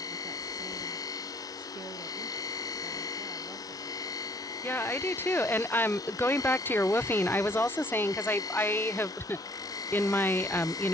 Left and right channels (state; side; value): normal; both; correlation 0.60